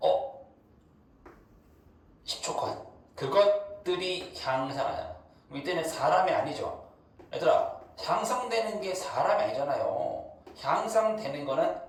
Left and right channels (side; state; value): both; identical; correlation 1.00